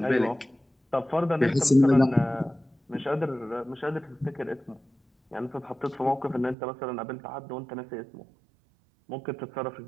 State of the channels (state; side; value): drops out; left; at 6.6 s